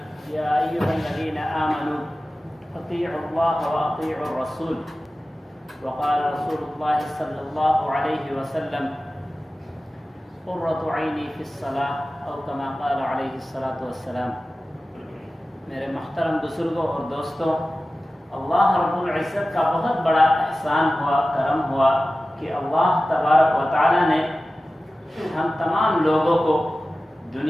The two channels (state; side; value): normal; both; correlation 0.95